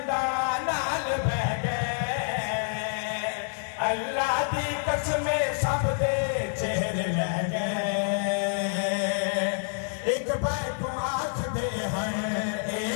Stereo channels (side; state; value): right; silent; digital silence